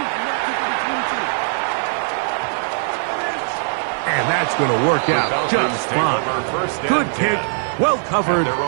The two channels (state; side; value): silent; left; 66 dB below the other